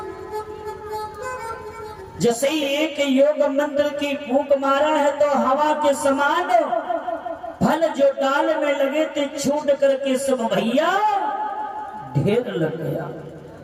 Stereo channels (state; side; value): identical; both; correlation 1.00